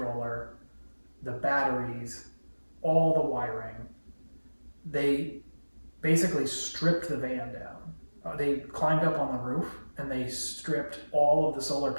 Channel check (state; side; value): inverted; both; correlation -1.00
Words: the batteries, all the wiring. They basically stripped the van down. They climbed up on the roof and they stripped all of the solar